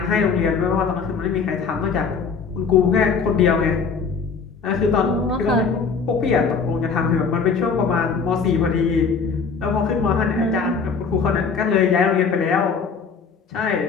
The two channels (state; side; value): quieter; right; 5.4 dB